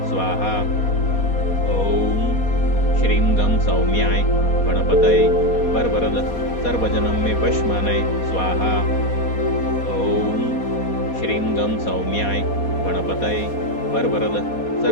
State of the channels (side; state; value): right; late; 4.2 ms